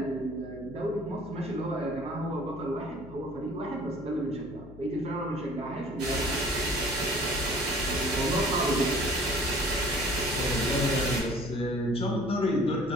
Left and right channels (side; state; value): left; noise; hum, 17 dB below the sound